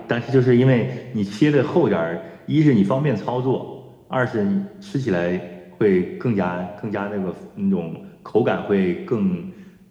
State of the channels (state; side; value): identical; both; correlation 1.00